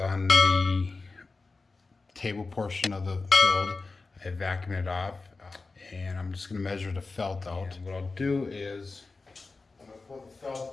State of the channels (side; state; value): right; quieter; 3.9 dB